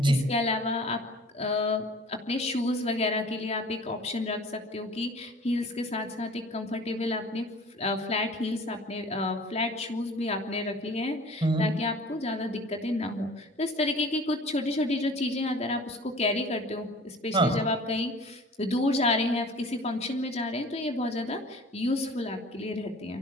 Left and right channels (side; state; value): both; normal; correlation 0.46